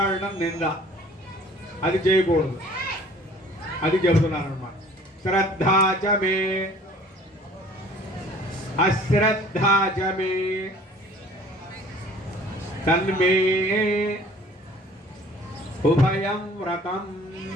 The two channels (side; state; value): both; normal; correlation 0.51